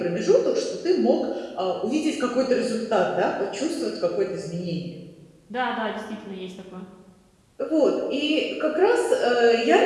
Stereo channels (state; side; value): identical; both; correlation 1.00